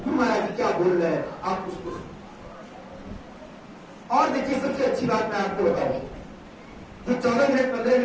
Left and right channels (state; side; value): identical; both; correlation 1.00